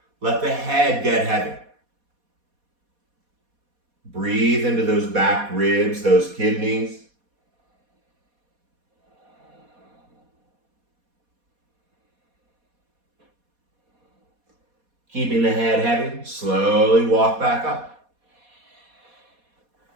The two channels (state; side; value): late; left; 4.2 ms